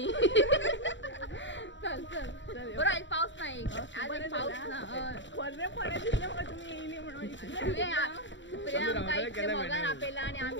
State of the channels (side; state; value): right; late; 0.54 ms